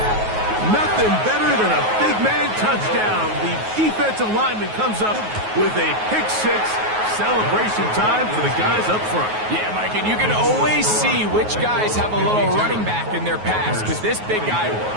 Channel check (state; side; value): late; left; 9.4 ms